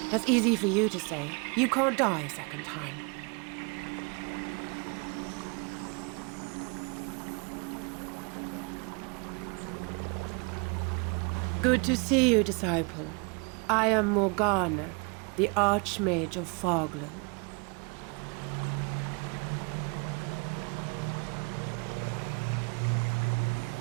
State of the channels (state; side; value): quieter; left; 32.5 dB